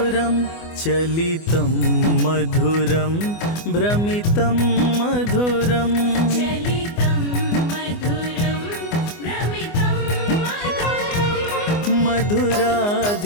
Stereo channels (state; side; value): late; right; 24 ms